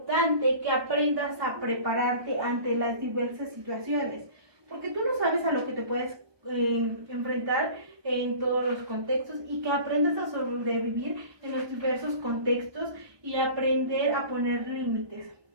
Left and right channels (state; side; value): late; left; 1.2 ms